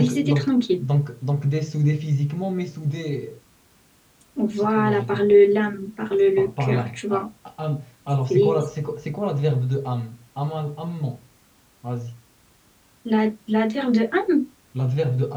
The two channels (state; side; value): identical; both; correlation 1.00